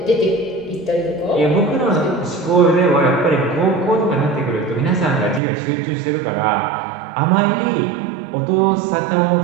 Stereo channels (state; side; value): drops out; left; at 5.4 s